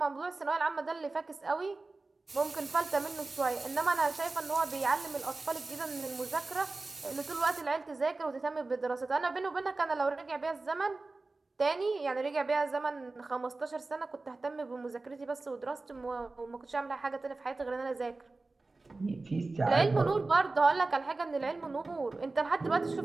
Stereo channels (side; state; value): left; quieter; 3.4 dB